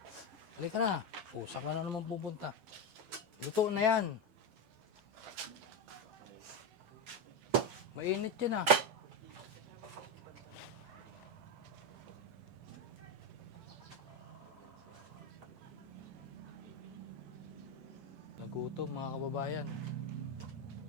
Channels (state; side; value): late; left; 13 ms